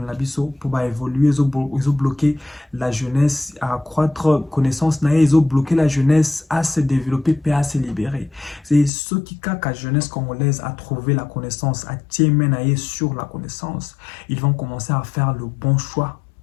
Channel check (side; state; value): right; drops out; at 8.9 s